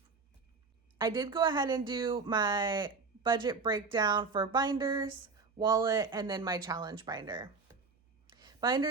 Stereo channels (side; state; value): left; quieter; 4.5 dB